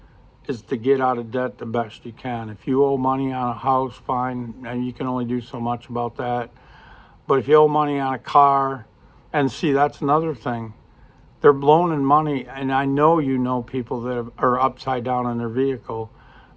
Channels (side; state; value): both; identical; correlation 1.00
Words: is to get out of debt the best you can. If you owe money on a house, fine, and you can only do so much about that. But if you owe money on a car, and see, that's another thing. They're loaning money, and I know people that are upside down on their vehicle.